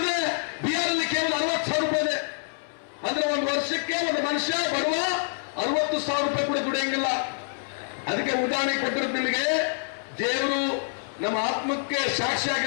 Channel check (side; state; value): right; silent; 61 dB below the other